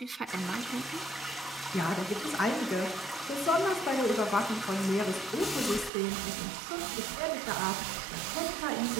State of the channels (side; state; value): left; drops out; at 5.9 s